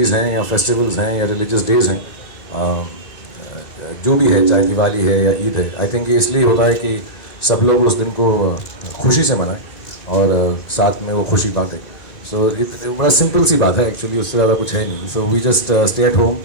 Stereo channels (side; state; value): right; late; 1.9 ms